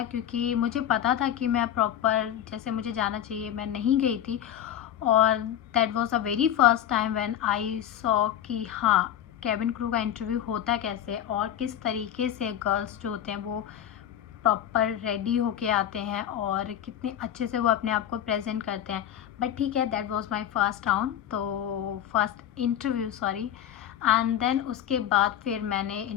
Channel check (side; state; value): right; quieter; 10.6 dB